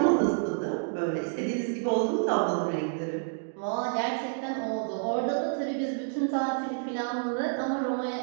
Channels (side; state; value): left; silent; digital silence